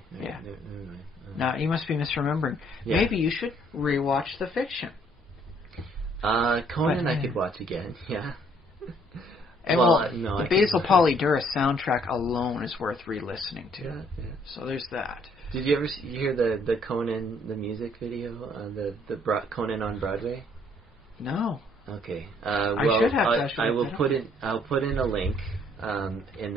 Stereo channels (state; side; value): normal; both; correlation 0.64